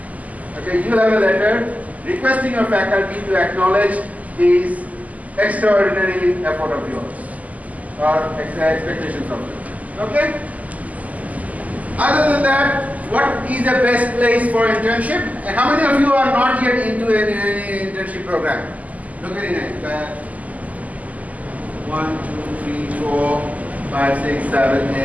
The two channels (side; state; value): left; late; 0.075 ms